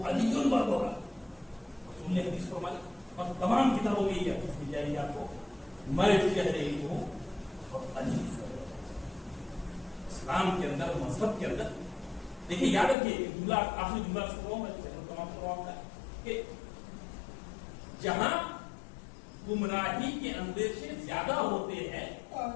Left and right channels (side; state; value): right; drops out; at 13.0 s